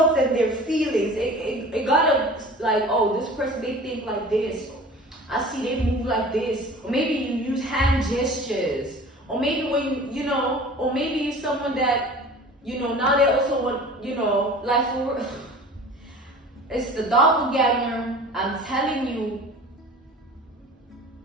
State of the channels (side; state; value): both; normal; correlation 0.42